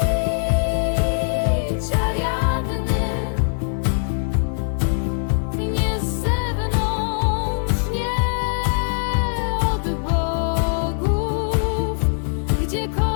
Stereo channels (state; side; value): silent; right; digital silence